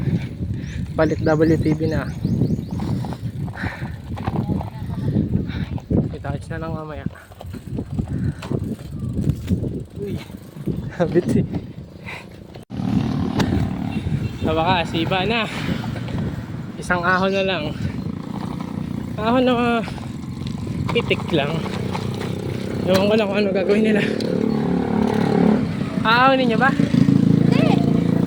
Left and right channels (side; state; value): both; identical; correlation 1.00